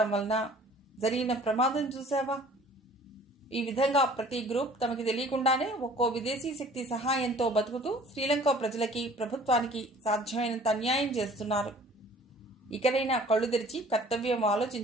వలన జరిగిన ప్రమాదం చూశావా? ఈ విధంగా ప్రతి గ్రూప్ తమకి తెలియకుండానే ఒక్కో విదేశీ శక్తి సహాయంతో బతుకుతూ శ్రీలంక ప్రజలకి, ప్రభుత్వానికి సాధ్యమైనంత అన్యాయం చేస్తున్నారు. ఇకనైనా కళ్ళు తెరిచి కర్తవ్యం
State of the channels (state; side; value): normal; both; correlation 0.51